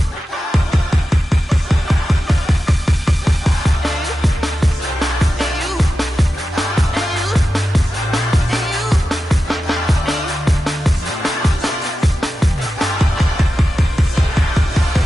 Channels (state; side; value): normal; both; correlation 0.92